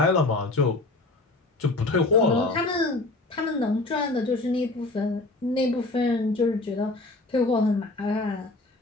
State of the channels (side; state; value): right; quieter; 3.0 dB